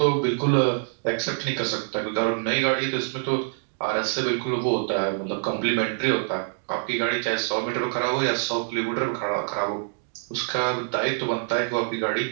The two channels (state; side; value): silent; left; digital silence